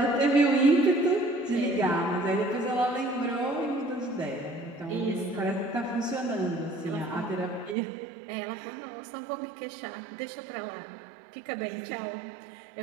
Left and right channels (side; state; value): left; drops out; at 7.8 s